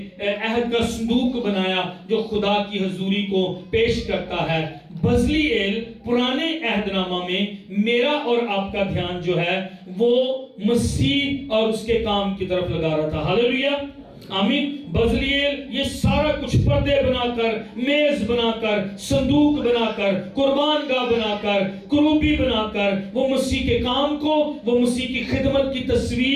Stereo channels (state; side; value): identical; both; correlation 1.00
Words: عہد کا صندوق بنایا جو خدا کی حضوری کو پیش کرتا ہے۔ بزلیل پرانے عہد نامہ میں میرا اور آپ کا دھیان جو ہے وہ مسیح اور اس کے کام کی طرف لگا رہا تھا۔ ہاللیلویہ، آمین۔ بزلیل یہ سارا کچھ پردے بنا کر، میز بنا کر، صندوق بنا کر، قربان گاہ بنا کر، کروبی بنا کر وہ مسیح کے کام کو، وہ مسیح کی خدمت کی